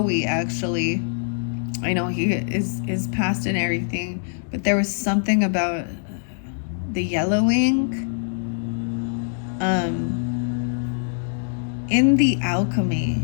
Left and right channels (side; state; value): right; silent; digital silence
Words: actually, I know he is past and everything, but there was something about the yellowing. In The Alchemy